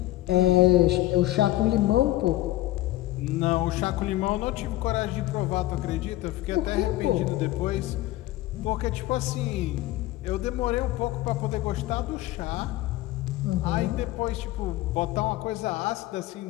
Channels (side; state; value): right; quieter; 16.6 dB